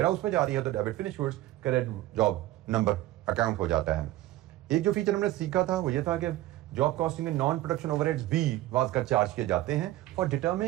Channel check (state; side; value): quieter; left; 15.7 dB